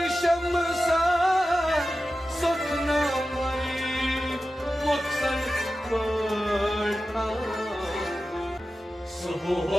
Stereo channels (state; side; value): normal; both; correlation 0.93